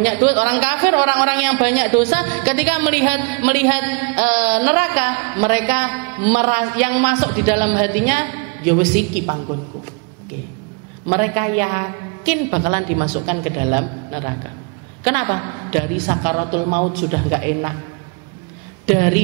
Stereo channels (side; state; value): left; quieter; 32.7 dB